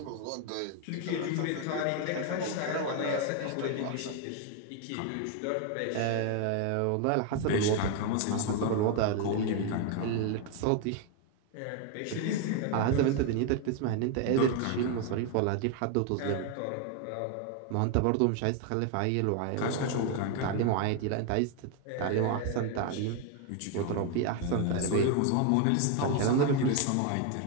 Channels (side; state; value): both; different; correlation 0.01